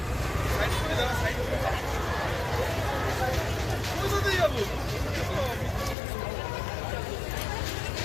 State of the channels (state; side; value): drops out; right; at 6.0 s